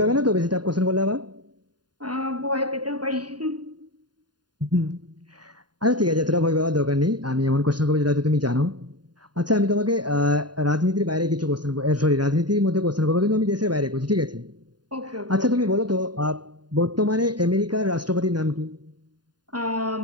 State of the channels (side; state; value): left; late; 0.70 ms